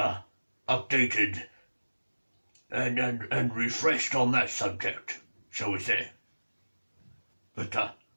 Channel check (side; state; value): both; inverted; correlation -1.00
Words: updated and refreshed on that subject, shall we say. But